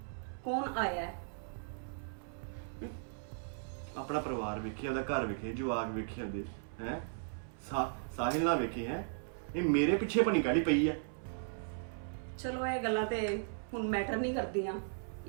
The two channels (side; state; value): left; silent; 53 dB below the other